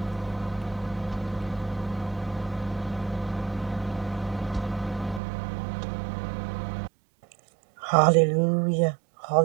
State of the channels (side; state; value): left; drops out; at 5.2 s